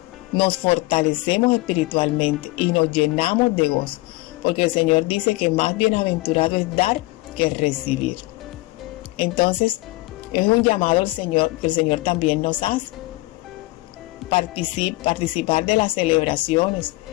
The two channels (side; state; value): right; quieter; 21.1 dB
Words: nos fortalecemos espiritualmente y nos llenamos de gozo, porque el Señor dice que más bienaventurado es dar que recibir. Entonces, es un llamado al Señor que el Señor también nos hace. Participar de las celebraciones